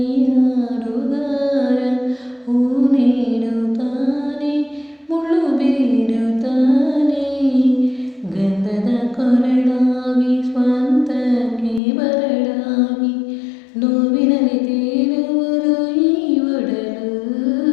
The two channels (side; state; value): right; drops out; at 11.8 s